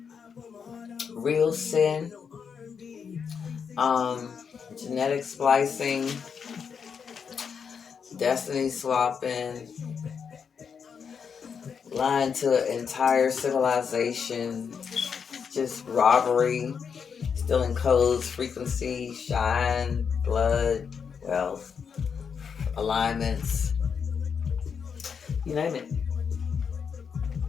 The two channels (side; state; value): right; quieter; 6.5 dB